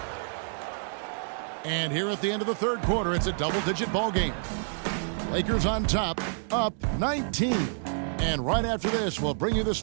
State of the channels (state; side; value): silent; left; digital silence